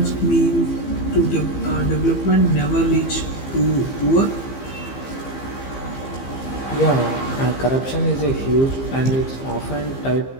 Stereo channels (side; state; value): right; late; 15 ms